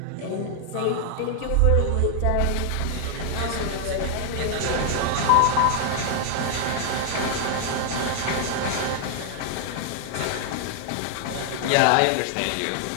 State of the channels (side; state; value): both; different; correlation 0.00